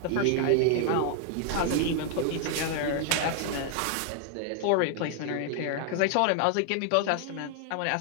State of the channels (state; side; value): different; both; correlation 0.00